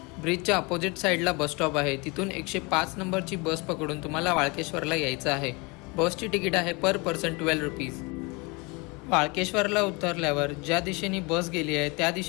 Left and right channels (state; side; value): quieter; right; 27.6 dB